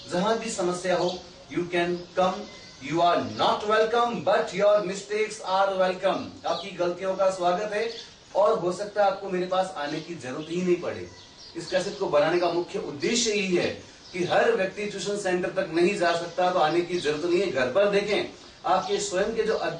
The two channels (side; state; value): both; identical; correlation 1.00